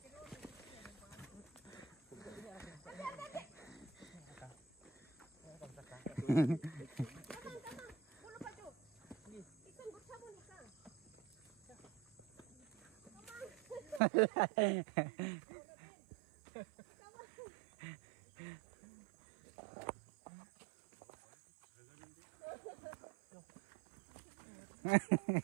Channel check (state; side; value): drops out; left; at 14.0 s